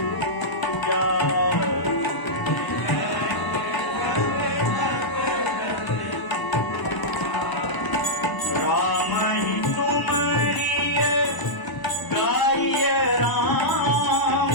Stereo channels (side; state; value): right; late; 1.0 ms